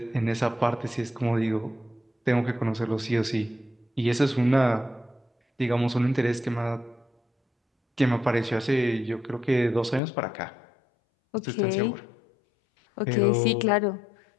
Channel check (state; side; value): drops out; right; at 10.0 s